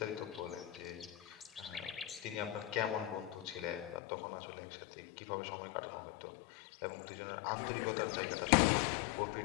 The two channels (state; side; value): drops out; right; at 4.0 s